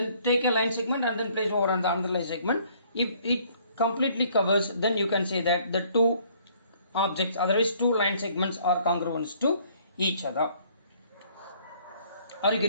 take a line segment and then place over on the another line segment. If it completely covers, then you can say that the two objects, otherwise two line segments are congruent to each other. Are you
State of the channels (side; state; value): both; inverted; correlation -0.61